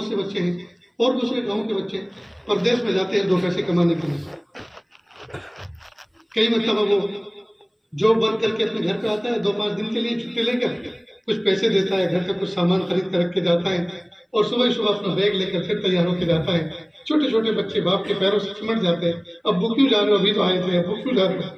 سے بچے ہیں اور دوسرے گاؤں کے بچے پردیس میں جاتے ہیں دو پیسے کمانے کے لیے۔ کئی مرتبہ وہ جاب ورک کر کے اپنے گھر پہ آتا ہے، 2-5 دن کے لیے چھٹی لے کر کچھ پیسے دیتا ہے، گھر کا کچھ سامان خرید کر رکھ کے جاتا ہے اور صبح صبح اپنا بیگ لے کر پھر تیار ہو کے جاتا ہے۔ چھوٹے چھوٹے بچے باپ کے پیروں سے سمٹ جاتے ہیں، ابو کیوں جا رہے ہو، ابھی تو آئے تھے، ابو کیوں جا رہے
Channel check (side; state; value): both; identical; correlation 1.00